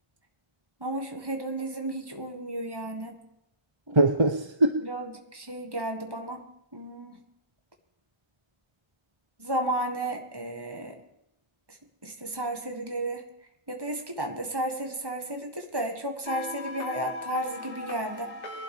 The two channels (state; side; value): late; left; 1.1 ms